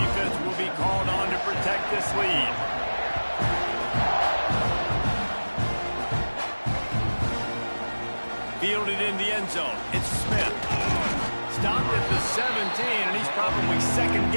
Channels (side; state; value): both; inverted; correlation -1.00